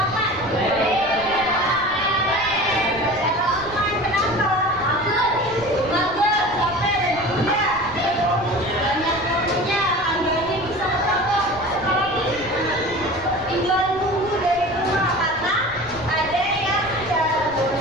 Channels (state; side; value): noise; right; rumble, 18 dB below the sound